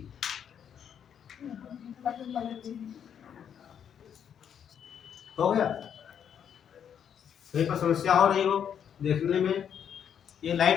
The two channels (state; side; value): quieter; right; 8.5 dB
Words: हो गया, कहीं पर समस्या हो रही हो देखने में, ये